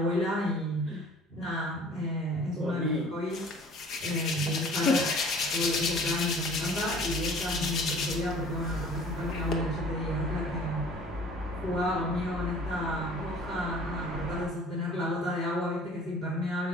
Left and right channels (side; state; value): both; normal; correlation 0.49